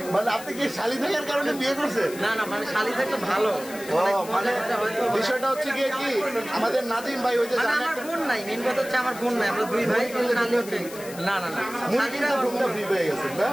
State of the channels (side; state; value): left; noise; hiss, 15 dB below the sound